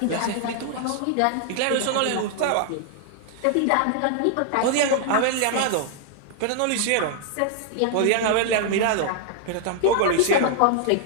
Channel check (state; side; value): different; both; correlation 0.00